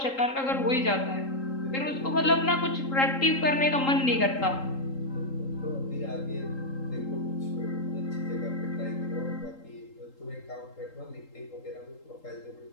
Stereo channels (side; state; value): right; late; 3.8 ms